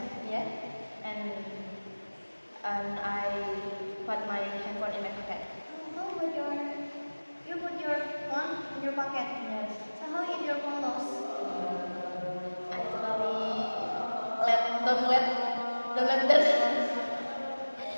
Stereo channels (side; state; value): both; inverted; correlation -1.00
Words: And I put my handphone in my pocket. Oh, but you put your phone in your pocket. Yes. So how if your phone lost? I totally don't let that.